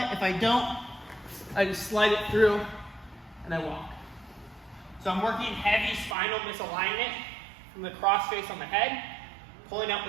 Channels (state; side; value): drops out; left; at 6.2 s